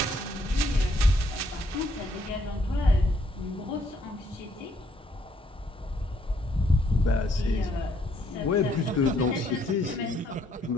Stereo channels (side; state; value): both; normal; correlation 0.69